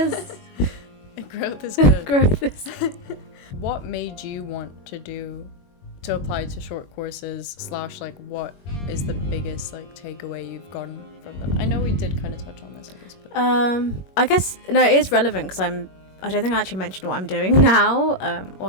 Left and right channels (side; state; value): right; late; 21 ms